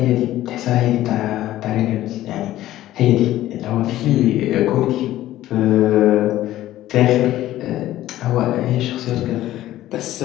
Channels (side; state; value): right; quieter; 14.3 dB